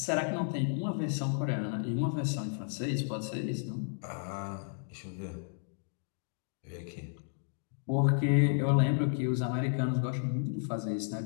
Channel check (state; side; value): silent; right; digital silence